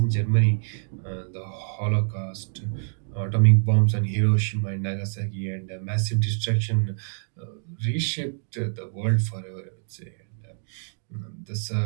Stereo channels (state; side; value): silent; left; digital silence